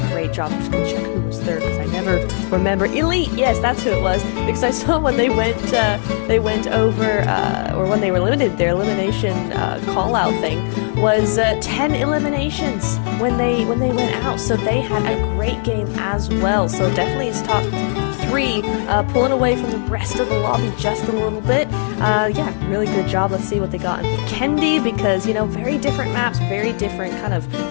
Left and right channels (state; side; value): silent; right; 67 dB below the other